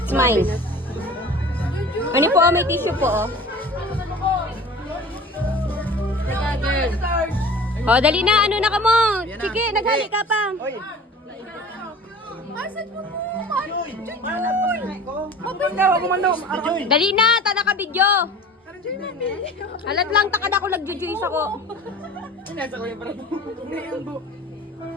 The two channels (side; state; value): both; normal; correlation 0.41